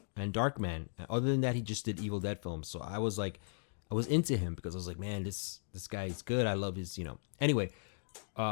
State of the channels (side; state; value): right; silent; digital silence